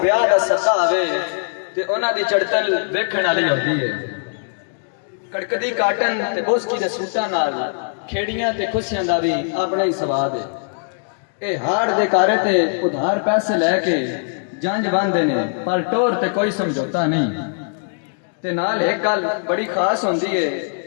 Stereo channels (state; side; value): silent; right; digital silence